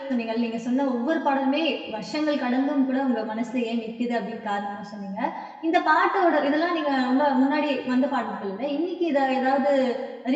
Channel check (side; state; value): both; identical; correlation 1.00